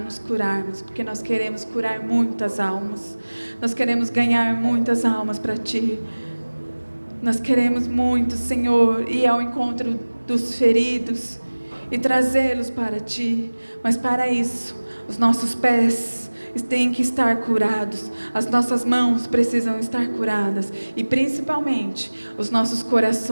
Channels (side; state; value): both; inverted; correlation -1.00